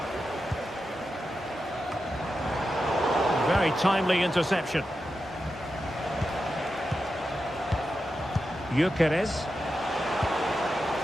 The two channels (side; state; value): both; normal; correlation 0.89